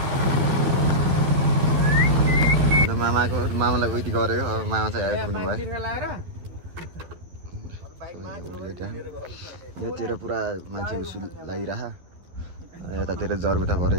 मामालाई उति गरेको अब मामा चाहिँ आइपुग्नु भयो। योतिर पुरा मान्छे उसु लागिरह यतातिर जरबुटा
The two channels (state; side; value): late; left; 12 ms